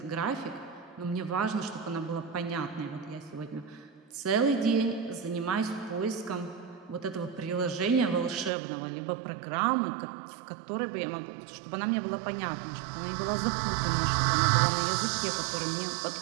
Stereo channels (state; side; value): drops out; left; at 8.5 s